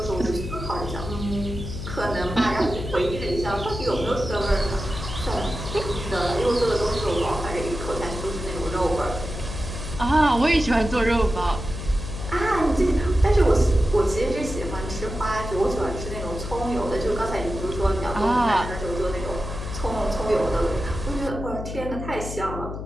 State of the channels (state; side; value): noise; left; hum, 7 dB below the sound